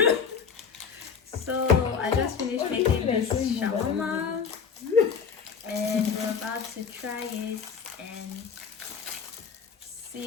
So I just finished making this shawarma and we're about to try it and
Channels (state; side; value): quieter; right; 6.3 dB